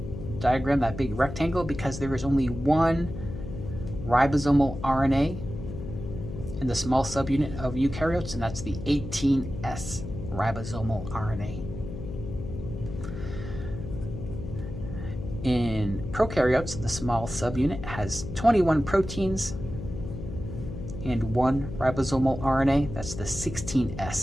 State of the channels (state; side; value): noise; left; hum, 8 dB below the sound